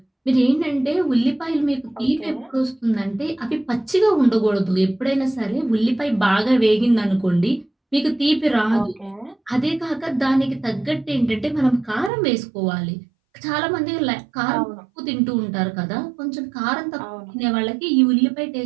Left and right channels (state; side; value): drops out; left; at 12.1 s